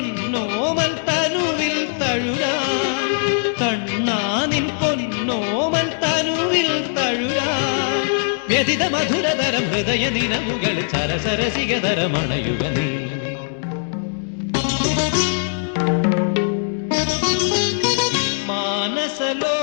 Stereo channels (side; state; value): right; silent; 65 dB below the other